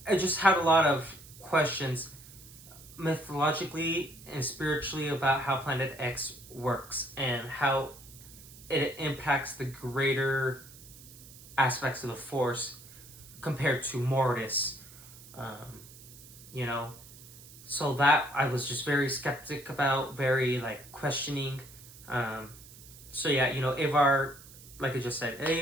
I just had a lot of questions mythologically and spiritually about how Planet X works and how it impacts the greater aspects of the Force compared to Mortis. You know, so that I was just very skeptic about, very like questioning. So yeah, you know, Avar, like I just said,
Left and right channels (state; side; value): noise; right; hiss, 19 dB below the sound